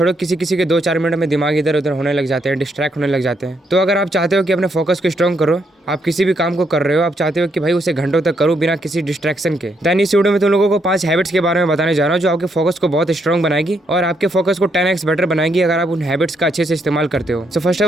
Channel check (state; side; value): normal; both; correlation 0.76